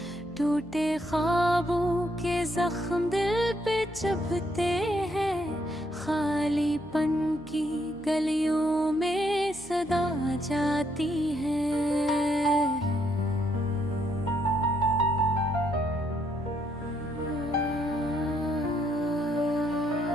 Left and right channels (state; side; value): noise; left; hum, 22 dB below the sound